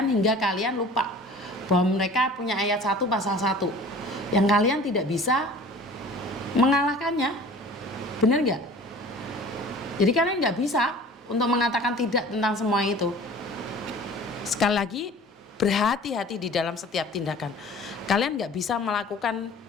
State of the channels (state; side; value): normal; both; correlation 0.44